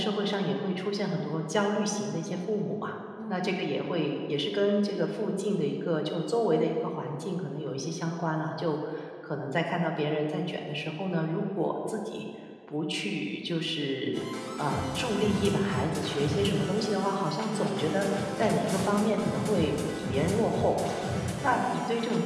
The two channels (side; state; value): both; identical; correlation 1.00